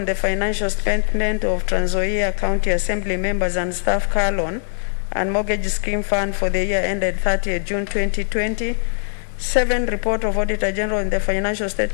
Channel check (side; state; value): right; silent; 62 dB below the other